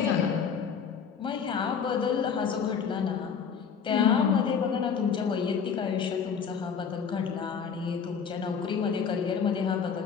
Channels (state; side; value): quieter; right; 6.6 dB